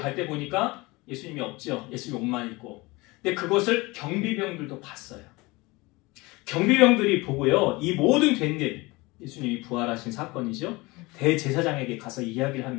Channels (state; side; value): quieter; right; 23.2 dB